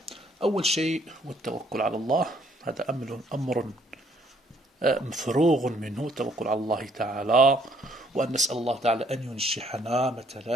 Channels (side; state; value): both; normal; correlation 0.65